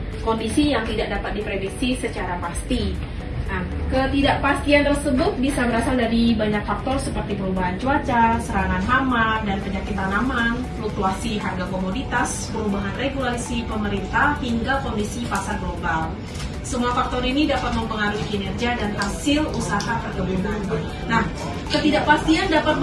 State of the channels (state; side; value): identical; both; correlation 1.00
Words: kondisi yang tidak dapat diprediksi secara pasti. Nah, ketidakpastian tersebut bisa berasal dari banyak faktor seperti perubahan cuaca, serangan hama dan penyakit tanaman, fluktuasi harga komoditas, perubahan regulasi pemerintah, hingga kondisi pasar global. Semua faktor ini dapat mempengaruhi kinerja dan hasil usaha perkebunan. Nah, ketidakpastian dapat